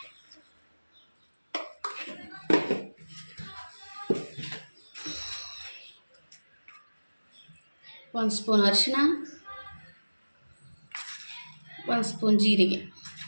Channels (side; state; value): both; inverted; correlation -1.00